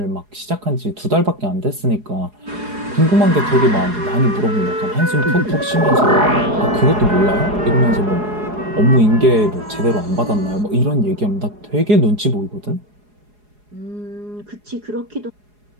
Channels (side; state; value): left; late; 4.8 ms